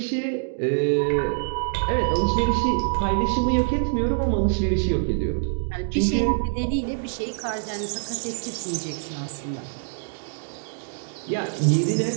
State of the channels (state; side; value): silent; left; digital silence